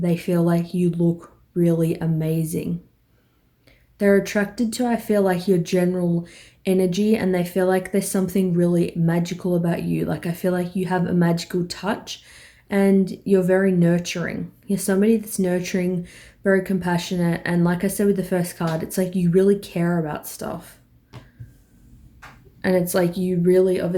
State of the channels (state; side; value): identical; both; correlation 1.00